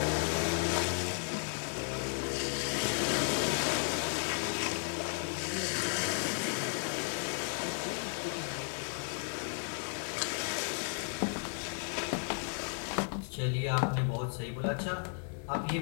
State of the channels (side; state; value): right; silent; 55 dB below the other